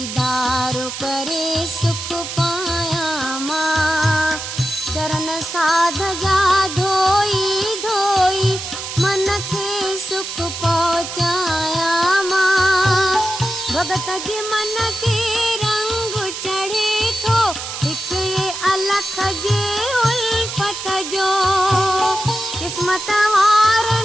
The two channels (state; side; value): noise; right; hiss, 7 dB below the sound